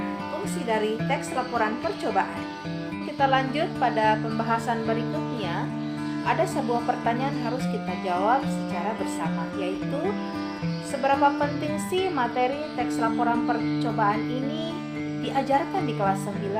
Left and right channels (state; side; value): identical; both; correlation 1.00